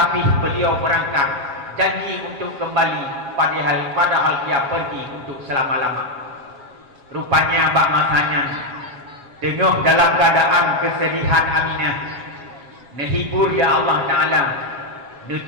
beliau berangkat janji untuk kembali padahal dia pergi untuk selama-lama. Rupanya bak masanya tengah dalam keadaan kesedihan Aminah. Nehibur ya Allah Ta'ala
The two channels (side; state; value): left; late; 7.3 ms